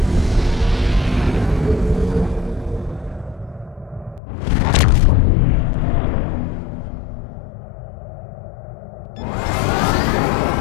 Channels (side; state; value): right; drops out; at 4.2 s